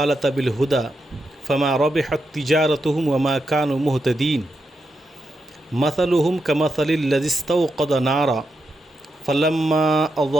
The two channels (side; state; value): both; normal; correlation 0.85